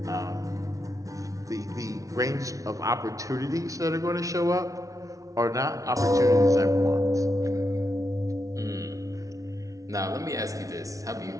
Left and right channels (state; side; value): late; left; 0.17 ms